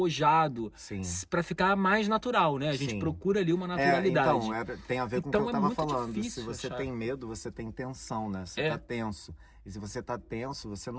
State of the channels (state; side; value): identical; both; correlation 1.00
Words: pra ficar mais natural, né? A gente procura ali uma naturalidade. Então, tem a ver com o que eu tava falando. Se você achar. tem medo, você tem tensão, né? Você tá tenso. E se você tá tenso, você